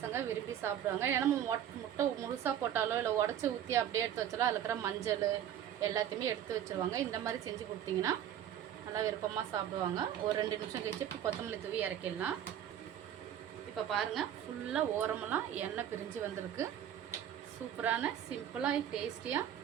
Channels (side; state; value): left; quieter; 10.3 dB